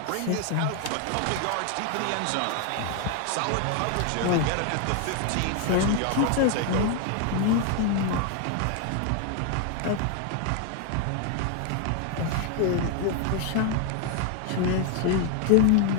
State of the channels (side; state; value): both; different; correlation 0.00